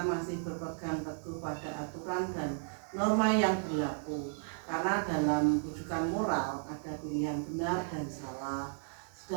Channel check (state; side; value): silent; left; 55 dB below the other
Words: masih berpegang teguh pada aturan dan norma yang berlaku, karena dalam bujukan moral ada pilihan benar dan salah,